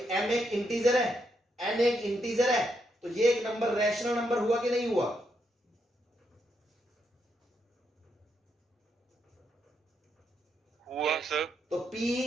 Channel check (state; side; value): normal; both; correlation 0.79